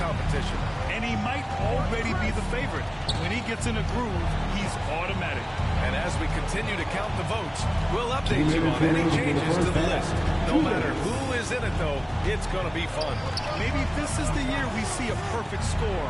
And he might already be the favorite. When he gets in a groove, he's automatic. And as we continue to count the votes, we'll update you on any changes to the list. No matter who is in it, though, it's going to be fun. Maybe this is the year we see a perfect score.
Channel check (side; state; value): both; identical; correlation 1.00